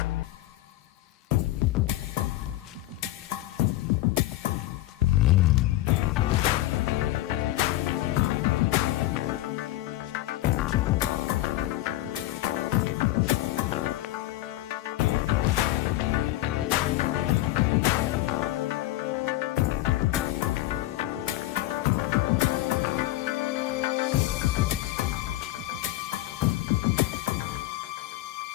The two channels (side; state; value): right; quieter; 16.4 dB